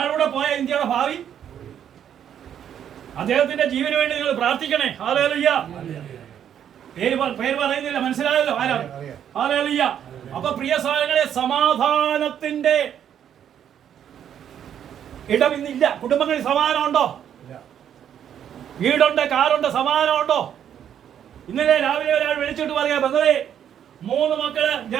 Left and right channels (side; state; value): left; quieter; 9.4 dB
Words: പോയ ഇന്ത്യയുടെ ഭാവി. അദ്ദേഹത്തിന്റെ ജീവന് വേണ്ടി നിങ്ങൾ പ്രാർത്ഥിക്കണേ. ഹല്ലേലൂയ. പേര് പറയുന്നില്ല, മനസ്സിലായല്ലോ ആരാണ്? ഹല്ലേലൂയ. അപ്പൊ പ്രിയ സഹോദരങ്ങളെ, സമാധാനത്തിന്റെ ഇടം ഇന്നില്ല. കുടുംബങ്ങളിൽ സമാധാനമുണ്ടോ? വീടുണ്ട്, കാറുണ്ട്, സമാധാനമുണ്ടോ? ഇന്നലെ രാവിലെ ഒരാൾ വിളിച്ചിട്ട് പറയാ, ബന്ധവേ 3 മക്കള്